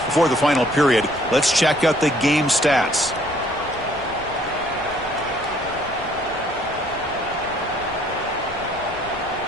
Before the final period, let's check out the game stats.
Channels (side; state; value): left; noise; rumble, 18 dB below the sound